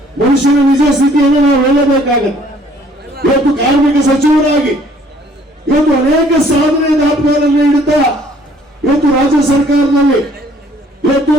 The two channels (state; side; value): normal; both; correlation 0.59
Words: ಮನುಷ್ಯನ ನಿಜ ಸ್ಥಿತಿಯನ್ನು ನಾವು ಹೇಳಬೇಕಾಗತ್ತೆ. ಇವತ್ತು ಕಾರ್ಮಿಕ ಸಚಿವರಾಗಿ ಇವತ್ತು ಅನೇಕ ಸಾಧನೆ ದಾಖಲೆಗಳನ್ನು ಇಡುತ್ತಾ ಇವತ್ತು ರಾಜ್ಯ ಸರ್ಕಾರದಲ್ಲಿ ಇವತ್ತು